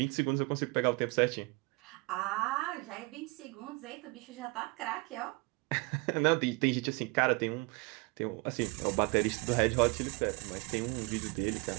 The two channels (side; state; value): left; quieter; 27.4 dB